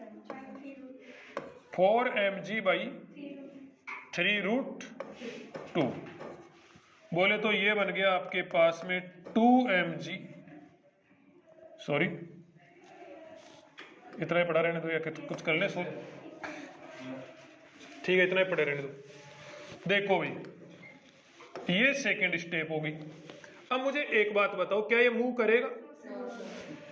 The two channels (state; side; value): identical; both; correlation 1.00